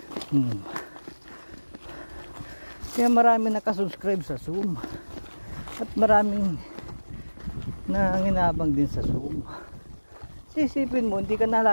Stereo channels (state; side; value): inverted; both; correlation -1.00